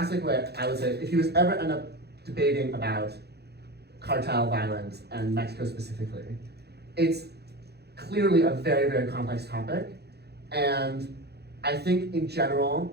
thing I would say, if you ever end up debating about cartel violence and Mexico specifically, it's clearly a very, very complex topic. And I think in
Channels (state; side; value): late; left; 0.48 ms